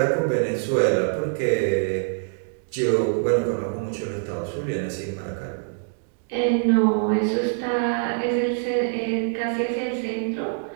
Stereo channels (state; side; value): silent; left; digital silence